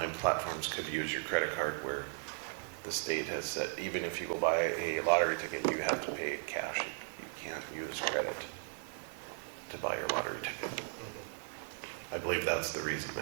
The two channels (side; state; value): left; silent; 53 dB below the other